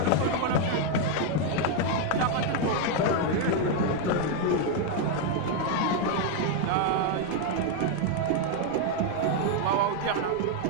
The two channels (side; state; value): both; different; correlation 0.01